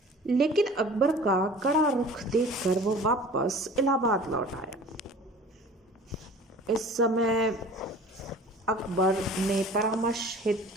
लेकिन अकबर का कड़ा रुख देखकर वो वापस इलाहाबाद लौट आया। इस समय अकबर ने परामर्श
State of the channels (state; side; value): normal; both; correlation 0.44